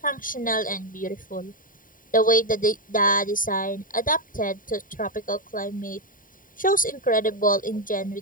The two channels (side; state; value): right; late; 0.40 ms